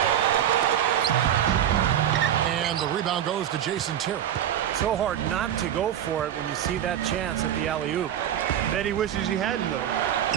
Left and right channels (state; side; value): quieter; left; 10.5 dB